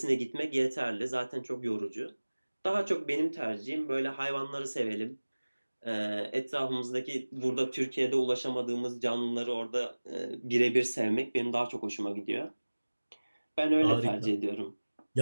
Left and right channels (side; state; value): both; inverted; correlation -1.00